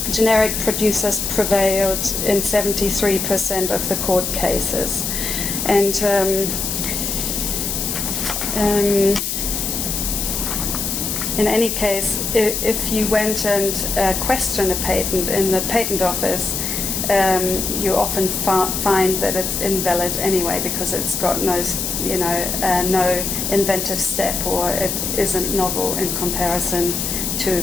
generic producers prevailed in 73% of the court cases. And in any case, if you went and questioned a patent in the patent office, you often find that it's invalid anyway, because it's got no inventive step, or it isn't novel in comparison to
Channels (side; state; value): left; noise; hiss, 2 dB below the sound